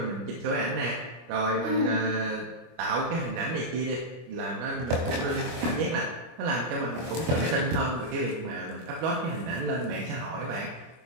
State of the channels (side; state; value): left; late; 24 ms